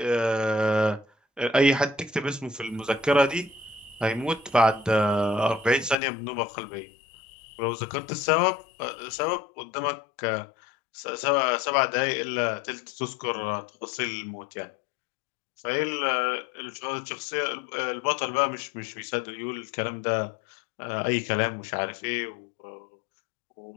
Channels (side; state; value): right; drops out; at 6.0 s